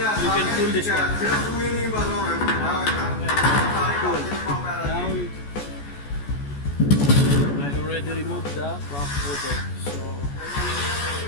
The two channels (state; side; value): late; right; 14 ms